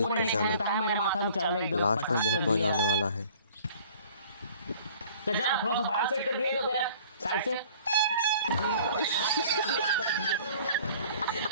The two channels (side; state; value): both; inverted; correlation -0.51